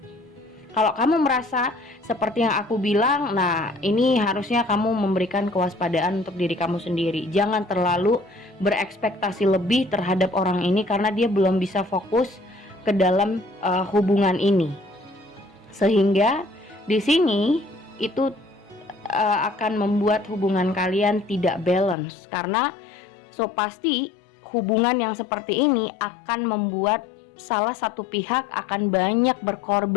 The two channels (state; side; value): drops out; right; at 22.0 s